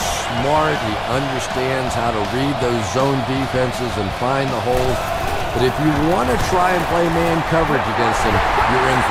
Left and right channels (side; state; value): both; identical; correlation 1.00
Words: smart. He understands how to read those zone defenses and find the holes. But if you want to try and play man coverage against him, you're in